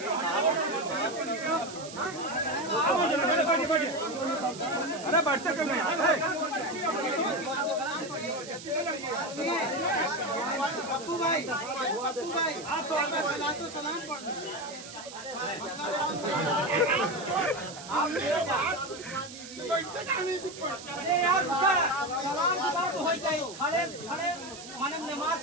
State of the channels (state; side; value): noise; right; hiss, 14 dB below the sound